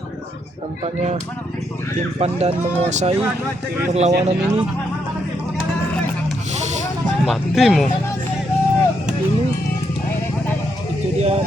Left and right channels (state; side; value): normal; both; correlation 0.77